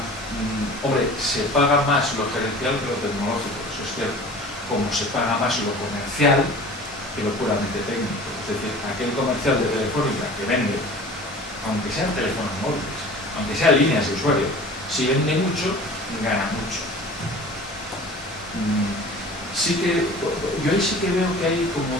Hombre, se paga más lo gerencial que lo tecnológico, eso es cierto. Como se paga más lo comercial que lo puramente técnico. Es decir, aquel comercial de Telefónica que vende, aunque sean teléfonos móviles, aunque sean líneas de usuario, si vende mucho, gana mucho. Yo ahí sí que veo que hay como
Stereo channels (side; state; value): both; normal; correlation 0.42